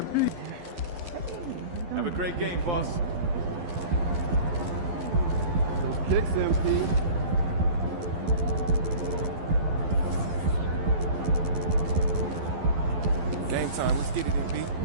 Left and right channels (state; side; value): late; left; 12 ms